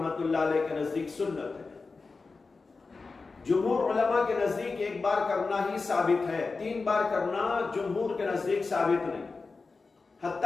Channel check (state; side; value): quieter; right; 4.1 dB